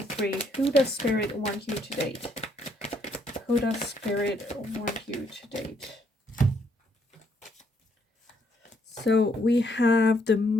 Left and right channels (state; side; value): normal; both; correlation 0.70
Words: Who does Spirit want you to date? Who does Spirit want you to date? So we have the